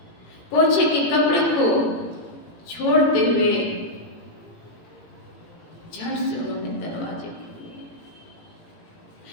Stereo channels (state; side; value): late; right; 18 ms